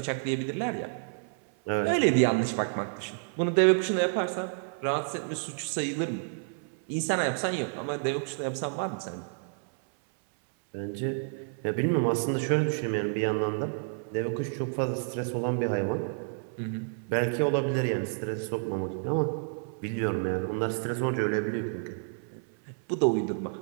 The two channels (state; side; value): silent; left; 57 dB below the other